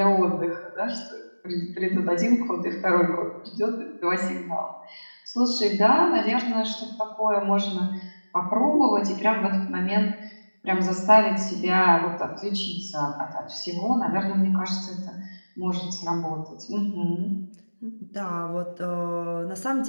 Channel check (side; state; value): both; inverted; correlation -1.00